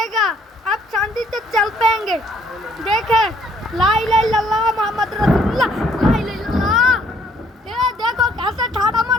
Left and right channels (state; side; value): normal; both; correlation 0.64